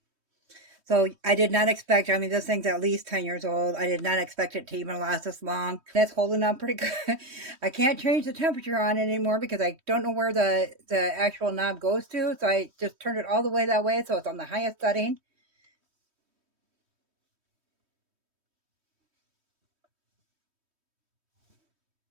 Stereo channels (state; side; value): late; left; 3.2 ms